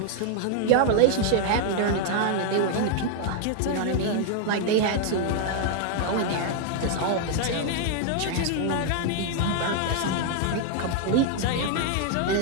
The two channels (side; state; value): both; different; correlation 0.00